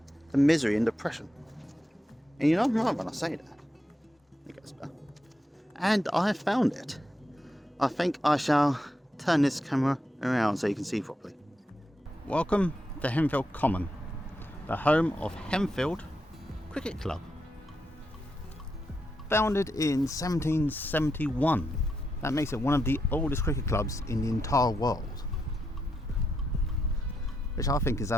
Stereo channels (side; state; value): both; normal; correlation 0.83